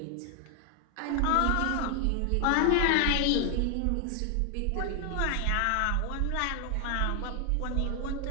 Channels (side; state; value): both; different; correlation 0.00